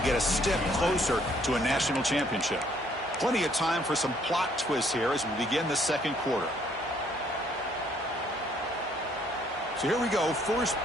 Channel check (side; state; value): both; normal; correlation 0.65